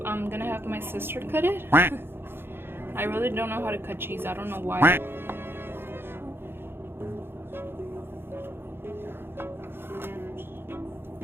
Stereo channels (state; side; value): late; left; 0.11 ms